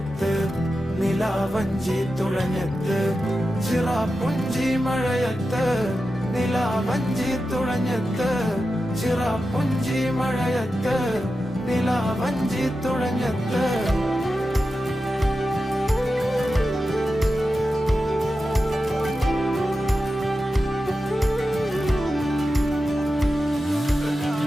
നിലാവഞ്ചി തുഴഞ്ഞത്ത്, ചിറാപ്പുഞ്ചി മഴയത്ത് നിലാവഞ്ചി തുഴഞ്ഞത്ത്, ചിറാപ്പുഞ്ചി മഴയത്ത് നിലാവഞ്ചി തുഴഞ്ഞത്ത്.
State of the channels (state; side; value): normal; both; correlation 0.91